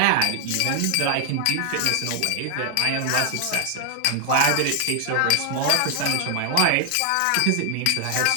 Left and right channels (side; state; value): both; different; correlation 0.00